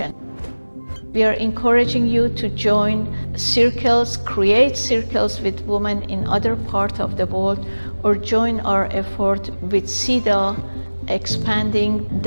We are encouraging you to join circles, create circles with women in other parts of the world, or join our effort with CEDAW, expanding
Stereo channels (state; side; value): inverted; both; correlation -1.00